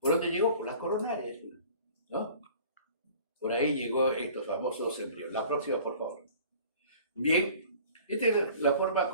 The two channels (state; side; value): inverted; both; correlation -0.47